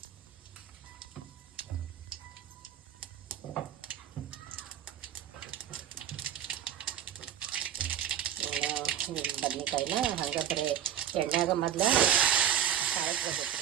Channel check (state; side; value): quieter; left; 10.0 dB